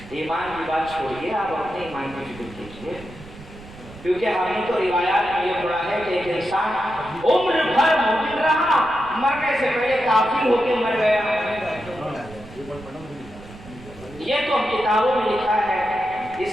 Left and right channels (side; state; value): right; noise; rumble, 18 dB below the sound